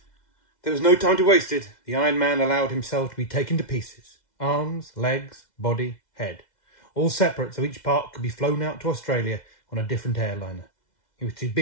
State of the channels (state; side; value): late; right; 2.0 ms